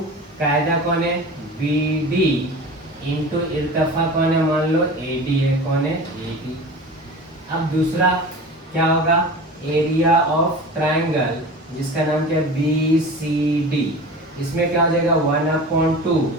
कायदा कौन है, बी डी इंटू इर्तिफा कौन है, मान लो ए डी है। कौन है, ए डी। अब दूसरा क्या होगा, एरिया ऑफ ट्राइंगल जिसका नाम क्या है, बी सी डी। इसमें क्या हो जाएगा, 1/2।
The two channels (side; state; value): both; normal; correlation 0.35